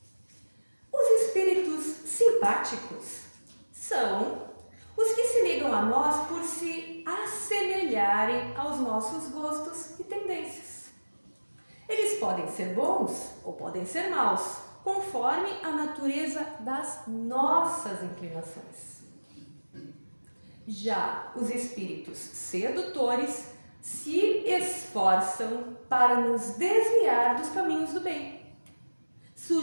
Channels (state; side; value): inverted; both; correlation -1.00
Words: Os espíritos simpáticos são os que se ligam a nós por se assemelharem aos nossos gostos e tendências. Eles podem ser bons ou podem ser maus, conforme a natureza das nossas inclinações. Já os espíritos sedutores se esforçam para nos desviar dos caminhos do bem,